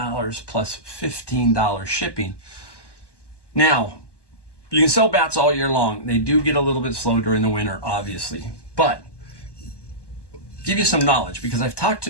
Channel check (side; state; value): right; late; 1.2 ms